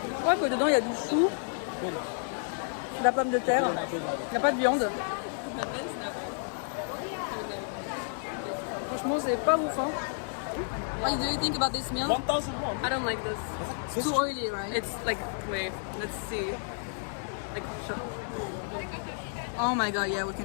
crois que dedans il y a du chou, de la pomme de terre, il n'y a pas de viande. Franchement c'est pas ouf hein. What do you think about this meal? 1,001. I don't like this. Too oily, right? It's like, wait, let's see. Like, show. Oh my god, yeah, we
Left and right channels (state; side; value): silent; right; digital silence